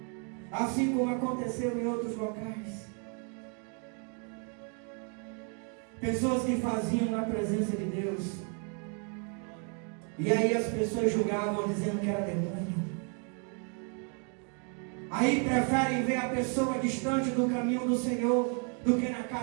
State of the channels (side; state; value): left; quieter; 39.6 dB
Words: assim como aconteceu em outros locais. Pessoas que faziam na presença de Deus, e aí as pessoas julgavam dizendo que era demônio. Aí preferem ver a pessoa distante do caminho do Senhor do que na